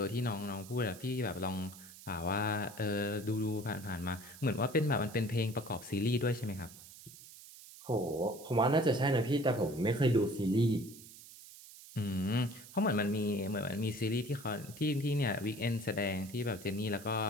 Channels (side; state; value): right; noise; hiss, 17 dB below the sound